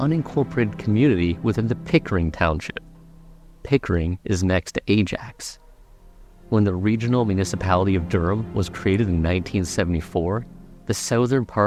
community within the Pickering Township. Pickering is next to Ajax. When the regional municipality of Durham was created in 1974, the southern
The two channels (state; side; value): identical; both; correlation 1.00